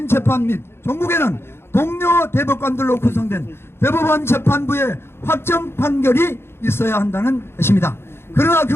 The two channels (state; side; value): late; right; 0.12 ms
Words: 재판 및 종국에는 동료 대법관들로 구성된 대법원 재판부의 확정 판결이 있어야 한다는 것입니다. 그러나